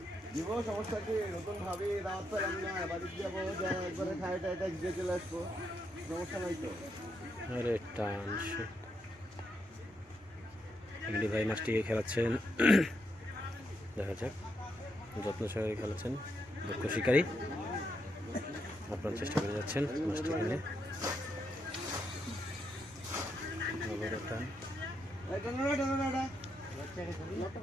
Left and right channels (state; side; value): normal; both; correlation 0.80